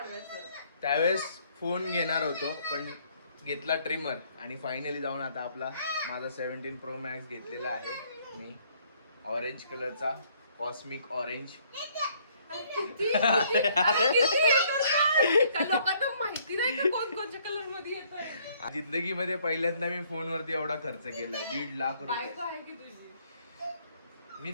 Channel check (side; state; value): both; inverted; correlation -0.64